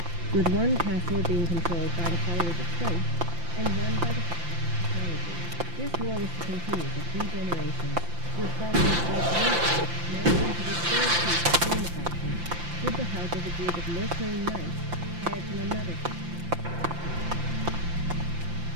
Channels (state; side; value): late; left; 5.8 ms